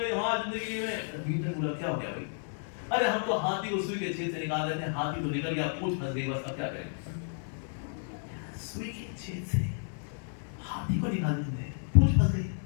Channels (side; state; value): right; silent; digital silence